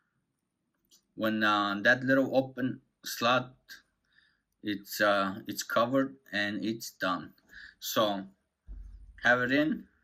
When that little open slot, it's covered and it's done. So have it in.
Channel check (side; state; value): both; identical; correlation 1.00